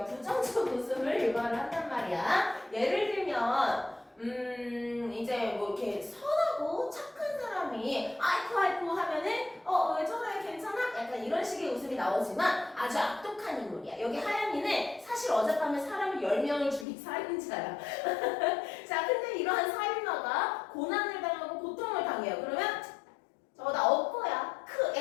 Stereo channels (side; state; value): right; drops out; at 16.9 s